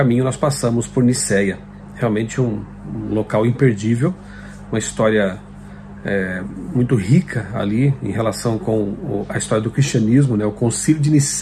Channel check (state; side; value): identical; both; correlation 1.00